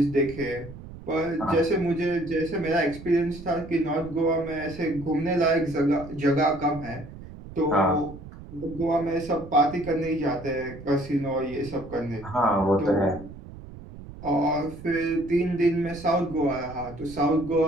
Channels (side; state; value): right; noise; rumble, 15 dB below the sound